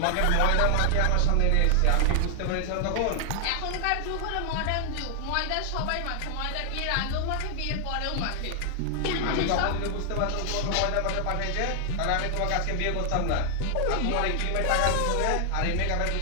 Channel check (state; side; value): different; both; correlation 0.00